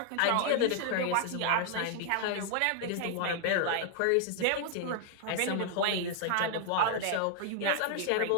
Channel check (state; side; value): different; both; correlation 0.00